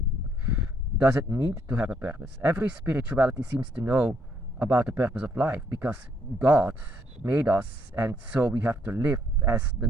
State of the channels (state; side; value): normal; both; correlation 0.70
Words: Does it need to have a purpose? Every spirituality seems to know about the purpose of life, because God made us, and so we have to live as the